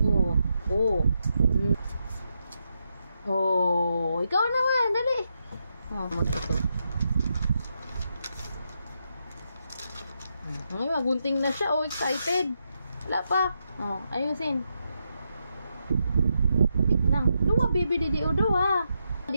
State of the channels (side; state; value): both; inverted; correlation -0.83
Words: Oh, ikaw naman, dali. Oh, ito. Ay, magunting na siya. Oh, excited. Wala pa. Oh, ayusin. Wait lang. Luwa, baby, didio, duwa.